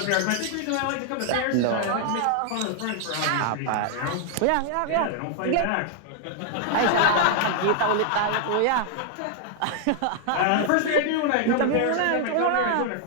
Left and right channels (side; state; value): both; different; correlation 0.00